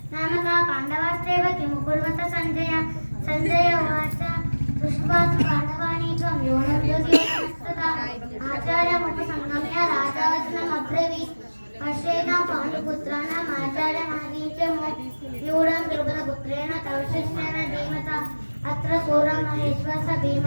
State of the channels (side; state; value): both; inverted; correlation -1.00